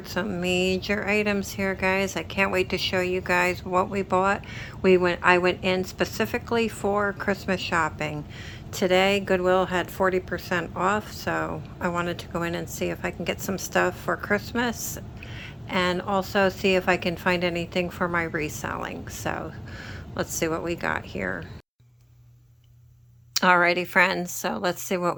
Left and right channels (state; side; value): identical; both; correlation 1.00